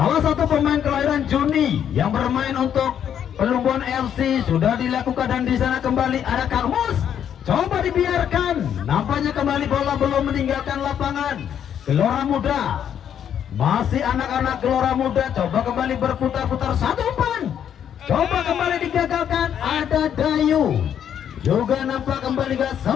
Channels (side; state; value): right; quieter; 9.2 dB